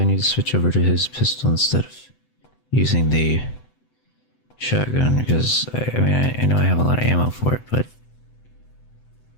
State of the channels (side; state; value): right; late; 7.9 ms